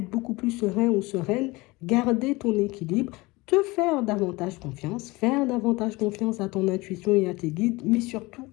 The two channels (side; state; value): right; quieter; 22.6 dB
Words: beaucoup plus serein ou sereine, garder ton équilibre, te faire davantage confiance à ton intuition et à tes guides, mais surtout